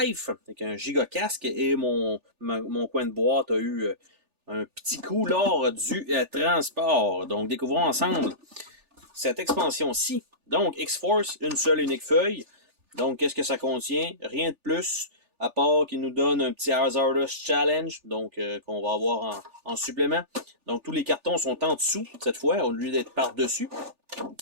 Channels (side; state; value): left; late; 3.4 ms